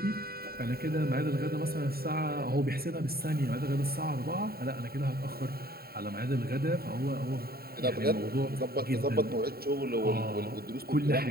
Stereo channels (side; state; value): left; late; 0.45 ms